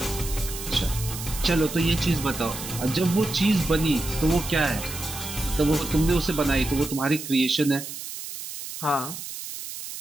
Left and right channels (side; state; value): right; noise; hiss, 9 dB below the sound